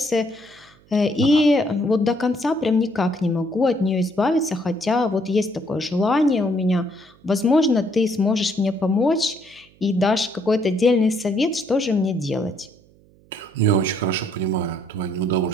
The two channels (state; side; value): noise; right; hum, 29 dB below the sound